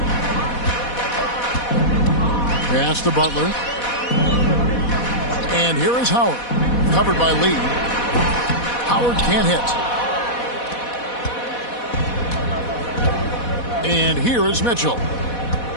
Pass to Butler. And here is Howard. Covered by Lee. Howard can't hit. And here is Mitchell.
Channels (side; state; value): right; late; 4.1 ms